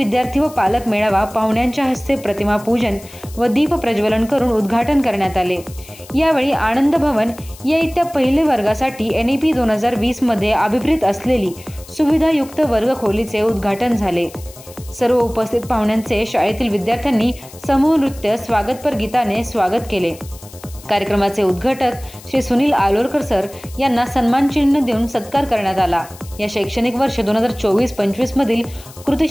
व पालक मेळावा पाहुण्यांच्या हस्ते प्रतिमा पूजन व दीप प्रज्वलन करून उद्घाटन करण्यात आले। यावेळी आनंद भवन या इयत्ता पहिली वर्गासाठी NEP 2020 मध्ये अभिप्रेत असलेली सुविधायुक्त वर्ग खोलीचे उद्घाटन झाले। सर्व उपस्थित पाहुण्यांचे शाळेतील विद्यार्थ्यांनी समूह नृत्य स्वागतपर गीताने स्वागत केले। कार्यक्रमाचे उद्घाटक श्री सुनील आलोरकर सर यांना सन्मान चिन्ह देऊन सत्कार करण्यात आला। या शैक्षणिक वर्ष 2024-25 मधील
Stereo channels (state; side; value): noise; left; hiss, 20 dB below the sound